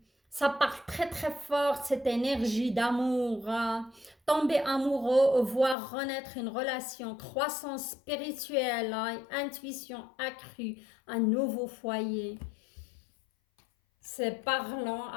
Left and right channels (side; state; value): right; drops out; at 5.8 s